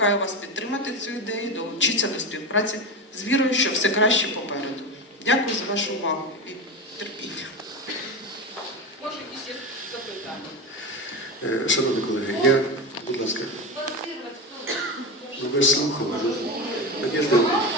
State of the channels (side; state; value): both; normal; correlation 0.20